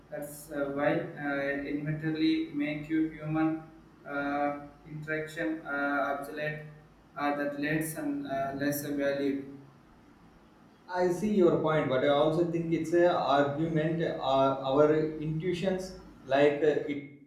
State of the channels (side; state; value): both; identical; correlation 1.00